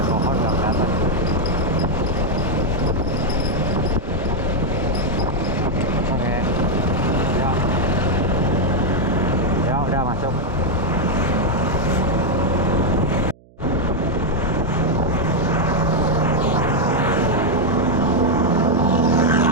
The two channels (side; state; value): right; noise; hum, 28 dB below the sound